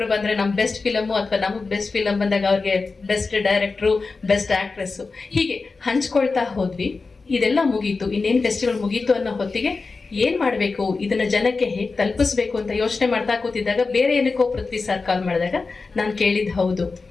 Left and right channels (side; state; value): right; quieter; 4.1 dB